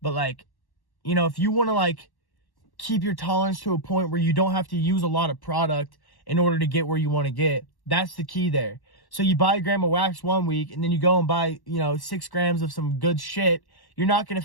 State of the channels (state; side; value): late; right; 1.1 ms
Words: like, you know, if you want to, like, keep your tolerance to a point where you don't have to use a lot of product in order to get where you want to get, that's the key there. So you buy a gram of wax 1 week, and then you go and buy, you know, 6 grams of some good shit. You're not going to